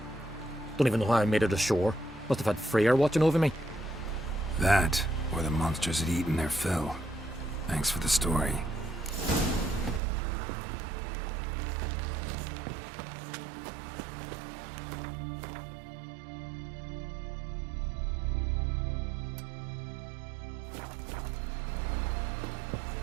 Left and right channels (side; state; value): left; drops out; at 10.0 s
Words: Don't even know how I made it ashore. Must have had Freyr watching over me. That, or the monsters had eaten their fill. Thanks for the story.